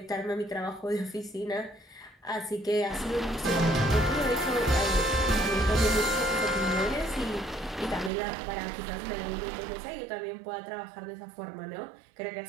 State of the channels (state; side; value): drops out; left; at 8.1 s